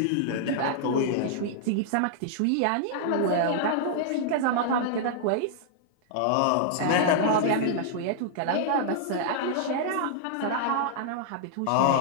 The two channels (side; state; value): both; different; correlation -0.01